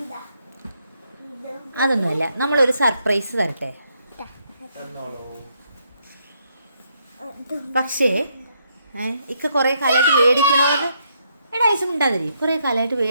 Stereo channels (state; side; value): inverted; both; correlation -0.75